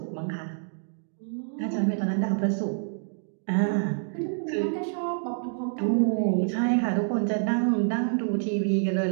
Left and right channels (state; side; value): silent; left; digital silence